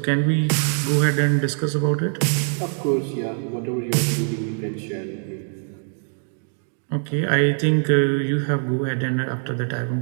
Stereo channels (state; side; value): silent; left; 60 dB below the other